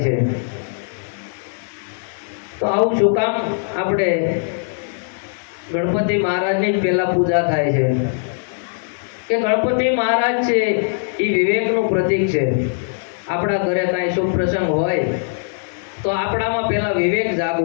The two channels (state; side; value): silent; right; digital silence